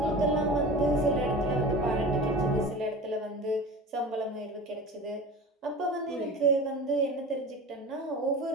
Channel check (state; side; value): normal; both; correlation 0.34